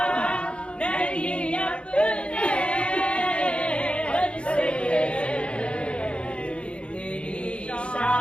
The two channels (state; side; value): late; right; 0.058 ms